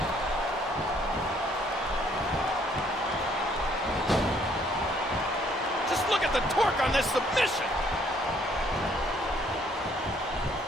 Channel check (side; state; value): both; normal; correlation 0.65